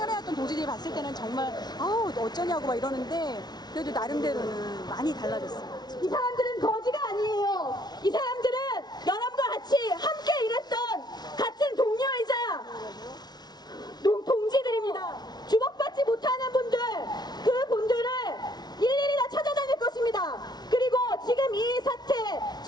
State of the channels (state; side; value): late; right; 0.19 ms